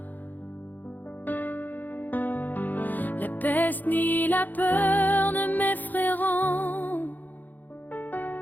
la peste ni la peur ne m'effrayeront.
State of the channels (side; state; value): right; late; 0.084 ms